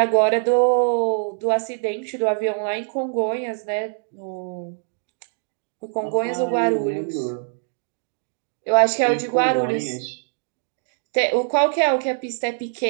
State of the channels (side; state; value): left; silent; 63 dB below the other